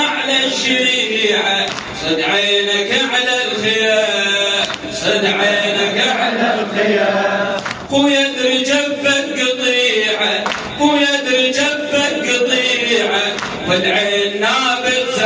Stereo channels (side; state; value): both; identical; correlation 1.00